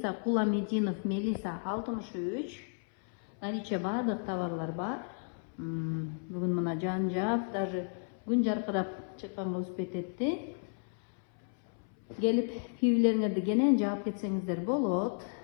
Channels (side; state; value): right; silent; 56 dB below the other